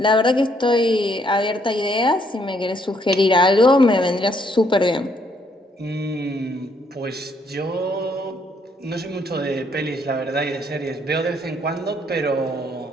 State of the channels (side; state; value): both; normal; correlation 0.70